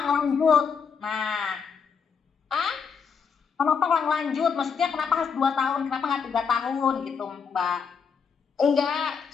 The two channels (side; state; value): right; quieter; 6.3 dB